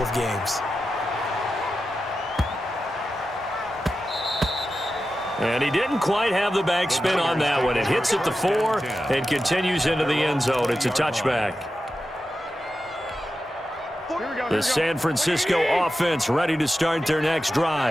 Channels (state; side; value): normal; both; correlation 0.91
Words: of games. And he didn't quite have the backspin on that one. It hits at the 4 and continues into the end zone. It's a touchback. The San Francisco offense ready to start their next